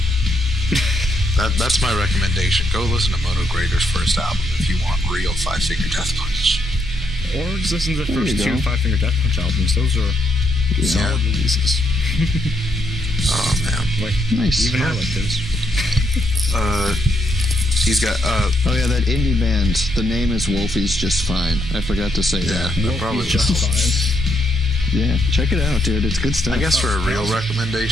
That's my recommendation. Go listen to Moto Grader's first album if you want real Five Finger Death Punch. Or just listen to the There first you two go. Five Finger Death Punch albums. Those are solid releases. Oh, man. Like, Nice. even I like those. He's got, Oh yeah, that indie band. The name is Wolfie's Just Fine. I forgot to say that. that probably Wolfie's Just Fine. Yeah, check it out, dude. It's good stuff. I guess for a real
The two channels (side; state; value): both; normal; correlation 0.76